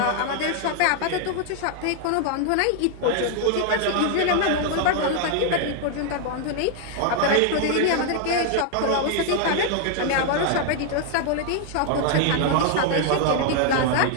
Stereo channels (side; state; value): both; different; correlation 0.00